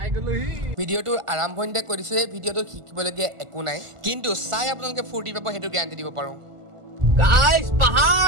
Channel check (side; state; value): left; late; 1.5 ms